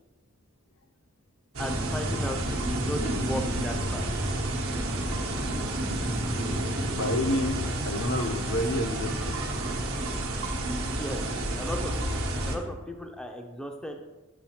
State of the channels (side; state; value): both; normal; correlation 0.59